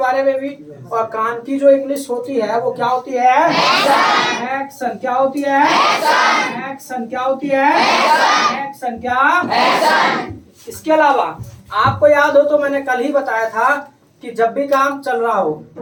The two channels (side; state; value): both; identical; correlation 1.00